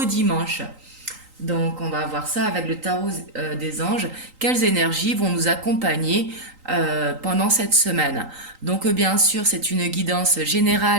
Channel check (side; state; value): left; late; 3.8 ms